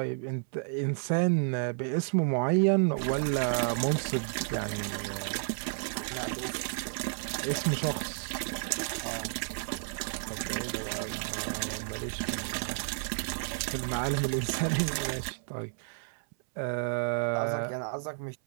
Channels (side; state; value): left; silent; 57 dB below the other